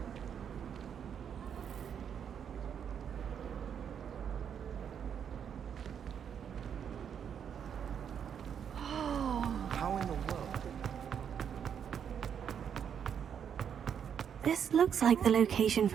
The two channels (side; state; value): left; quieter; 8.0 dB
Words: How in the world? This looks like the location